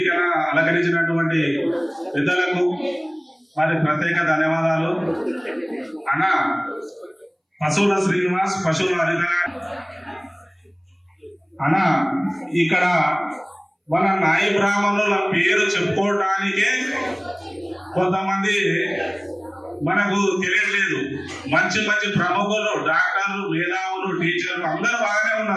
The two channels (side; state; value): both; identical; correlation 1.00